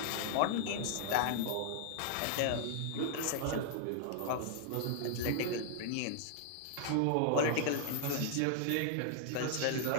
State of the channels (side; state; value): both; different; correlation 0.00